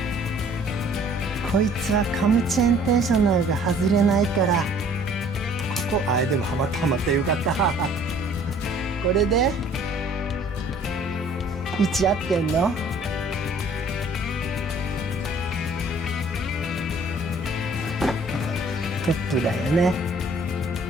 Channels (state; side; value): normal; both; correlation 0.55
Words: こいつはカムチェーンテンショナルが外れないから、ここでもはまったよかったこれで位置合ってんの？トップだよね。